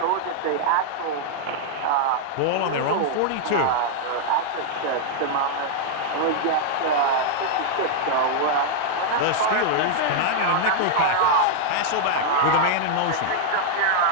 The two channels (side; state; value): both; different; correlation -0.01